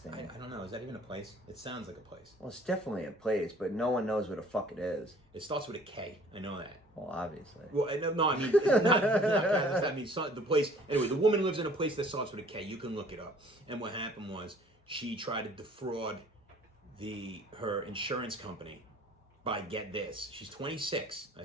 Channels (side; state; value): both; normal; correlation 0.53